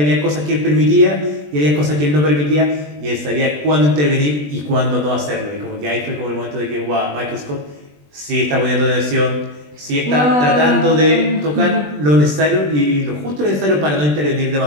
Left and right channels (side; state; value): left; late; 20 ms